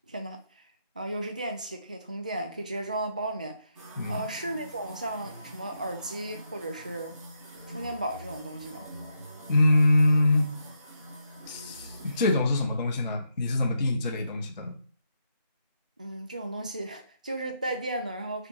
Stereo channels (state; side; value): inverted; both; correlation -0.81